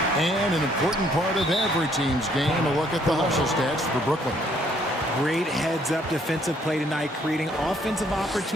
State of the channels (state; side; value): normal; both; correlation 0.65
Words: And an important part of every team's game, a look at the hustle stats for Brooklyn. Great heads-up defensive play tonight, creating offensive